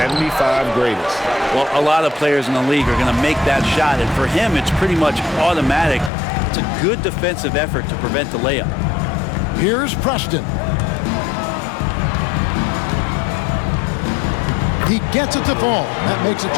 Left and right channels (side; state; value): right; drops out; at 6.1 s